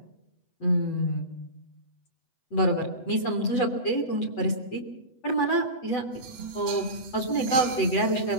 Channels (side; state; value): right; late; 8.1 ms